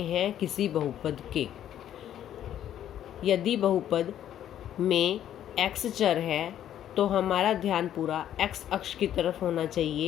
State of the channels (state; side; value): quieter; right; 11.0 dB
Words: हैं किसी बहुपद के। यदि बहुपद में x चर है तो हमारा ध्यान पूरा x अक्ष की तरफ होना